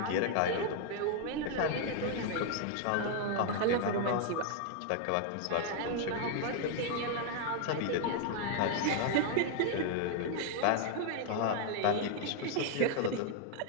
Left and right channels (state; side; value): different; both; correlation 0.00